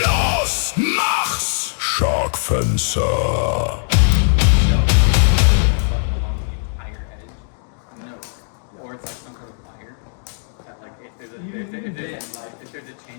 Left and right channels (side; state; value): right; silent; digital silence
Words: mach's! Sharkfencer. If there's a